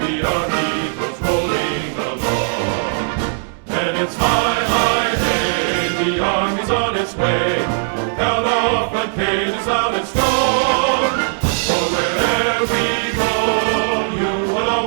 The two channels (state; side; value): silent; left; 67 dB below the other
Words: see our heroes rolling along. And it's high, high, hey, the army's on its way. Count off the cages loud and strong. For wherever we go, you will